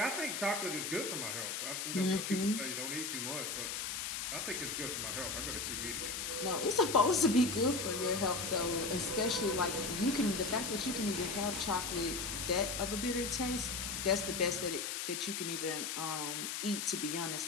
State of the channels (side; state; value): left; noise; hiss, 3 dB below the sound